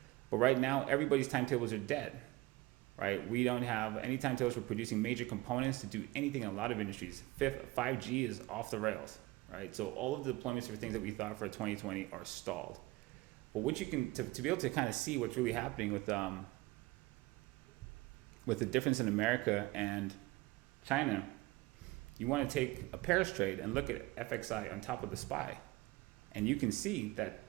But right now, everybody's timetables are dead, right? We don't have any timetables for producing major components to do anything in a lot of industries. 5G is off the rails, right? So all of the deployments for things that we thought for 2020 are stalled. But what you can, to be able to kind of see what's really happening with the difference in America and China, you want to take a pairs trade and look at FXI on top of the SPY. And you can see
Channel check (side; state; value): left; quieter; 20.5 dB